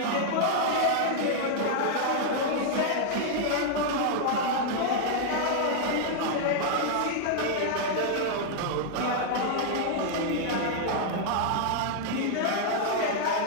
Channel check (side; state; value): both; different; correlation -0.01